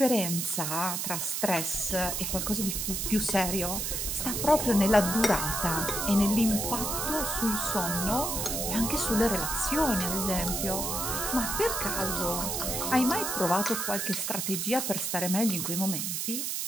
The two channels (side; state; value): right; noise; hiss, 1 dB below the sound